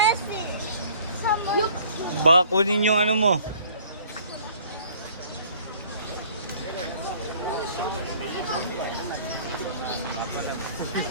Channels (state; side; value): inverted; both; correlation -0.53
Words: Baka kunin yung ano mo.